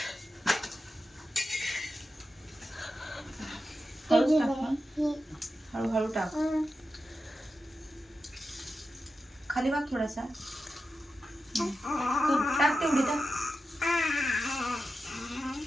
हळूच टाक ना. हळूहळू टाक. खाली वाग थोडासा. तू टाक तेवढी टाक.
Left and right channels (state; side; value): normal; both; correlation 0.91